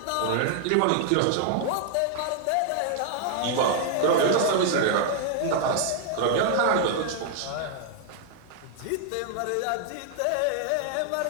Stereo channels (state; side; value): different; both; correlation 0.00